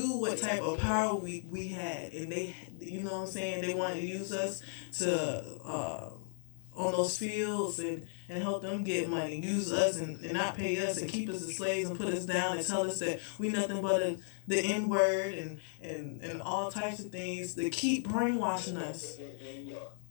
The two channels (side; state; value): right; silent; digital silence